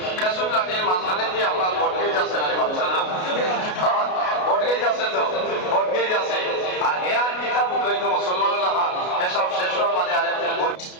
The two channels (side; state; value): right; late; 33 ms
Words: লাঠির মাঝখানে দিয়ে আপনার বটগেজ আছে না বাচ্চা না বটগেজ আছে তো বটগেজ আছে আর হে আর কিতাব উদ্বৈত মুসলমান লেখা এসব শেষ হওয়ার বাদে আরেকদিন